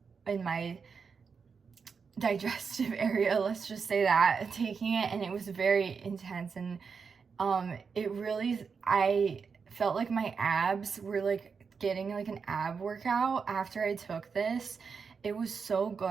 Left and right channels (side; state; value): left; quieter; 5.6 dB